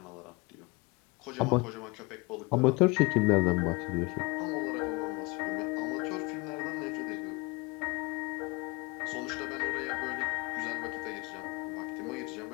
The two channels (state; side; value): quieter; right; 26.7 dB